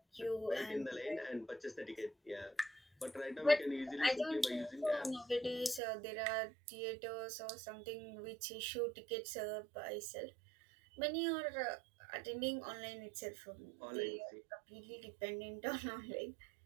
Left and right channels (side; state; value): left; drops out; at 5.8 s